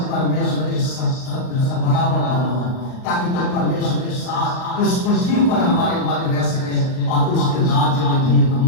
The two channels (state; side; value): late; right; 38 ms